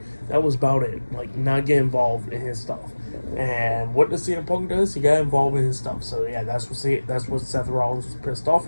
That was about it. Like, not get involved in his stuff. And what does CM Punk does? He got involved in his stuff. So yeah, that's what Seth Rollins was pissed off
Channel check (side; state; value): both; inverted; correlation -1.00